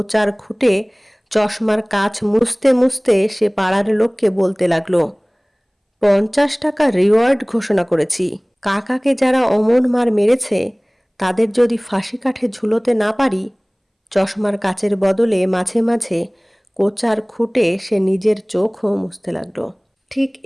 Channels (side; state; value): both; identical; correlation 1.00